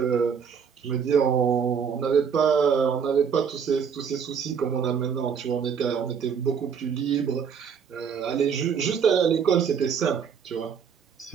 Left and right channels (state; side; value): quieter; left; 6.8 dB